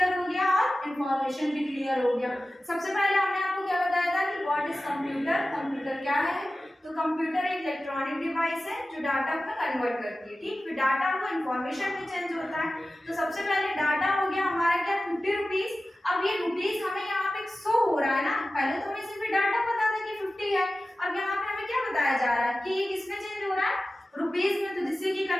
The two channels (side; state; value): both; normal; correlation 0.95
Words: हो गया और इंफॉर्मेशन भी क्लियर हो गया। सबसे पहले हमने आपको क्या बताया था कि व्हाट इज कंप्यूटर, कंप्यूटर क्या है, तो कंप्यूटर एक इलेक्ट्रॉनिक डिवाइस है जो डाटा को कन्वर्ट करती है। ठीक, फिर डाटा को इंफॉर्मेशन में चेंज होता है। तो सबसे पहले डाटा हो गया हमारा क्या, 50 रुपीज। अब ये रुपीज हमें यहाँ पे शो हो रहा है ना, पहले तो हमें सिर्फ डाटा पता था कि 50 है, अब यहाँ पे हमें क्या बताया जा रहा है कि ये किसमें चेंज हो रहा है, रुपीज में। तो जिससे कि